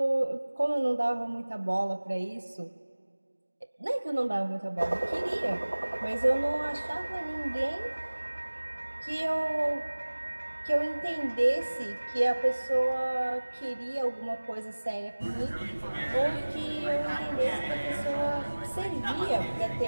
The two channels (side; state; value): both; inverted; correlation -1.00